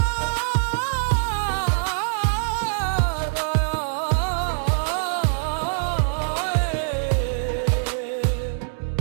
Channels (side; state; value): left; silent; digital silence